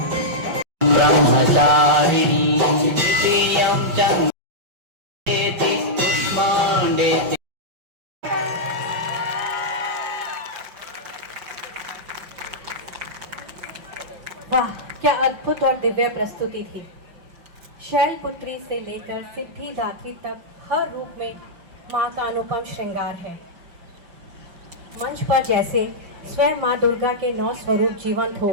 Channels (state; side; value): late; left; 5.9 ms